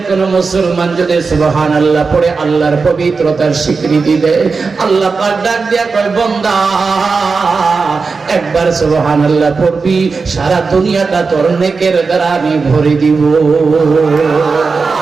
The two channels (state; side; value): quieter; left; 4.6 dB